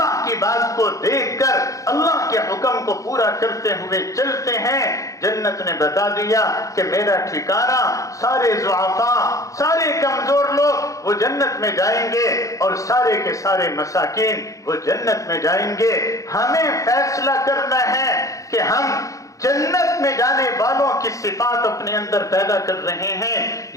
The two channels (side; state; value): right; late; 0.16 ms